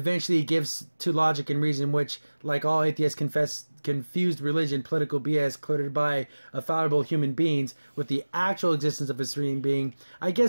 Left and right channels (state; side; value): inverted; both; correlation -1.00